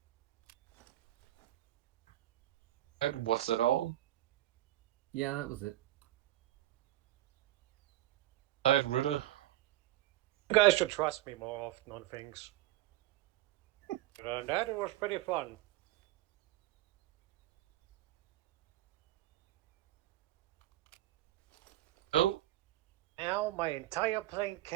And what's that all? Yeah, that was it. Alright, Ritter. You guys should trust me more often on things. That was pretty fun. Oh, Now my entire plane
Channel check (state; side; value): quieter; left; 15.3 dB